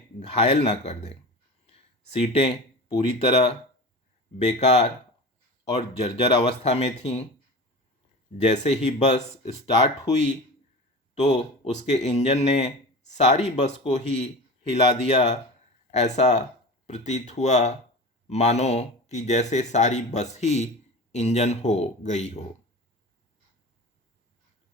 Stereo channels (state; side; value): normal; both; correlation 0.32